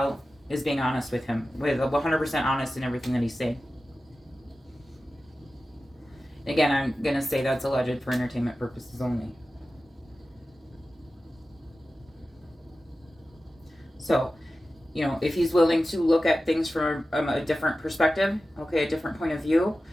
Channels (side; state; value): both; normal; correlation 0.94